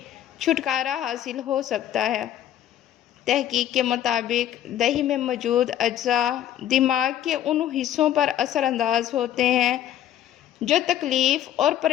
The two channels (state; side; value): quieter; right; 11.6 dB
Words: چھٹکارا حاصل ہو سکتا ہے۔ تحقیق کے مطابق دہی میں موجود اجزاء دماغ کے ان حصوں پر اثر انداز ہوتے ہیں جو تکلیف اور